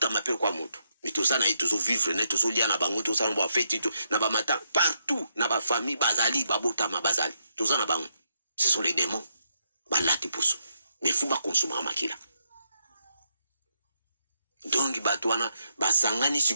mapel kwa moto mais tout ça na ito zo vivre na to lia na bango to ça na ba fête to na ba mata partout na ba famille bazali babotama bazali tout ça na bango ce sont les démons balati poso mais faut ba consommer makila. Donc batwana basangani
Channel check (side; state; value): both; inverted; correlation -0.80